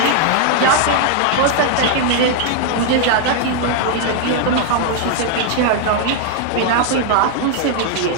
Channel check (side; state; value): both; different; correlation 0.00